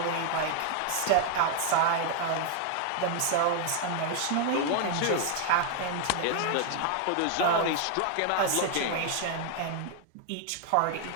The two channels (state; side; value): different; both; correlation 0.00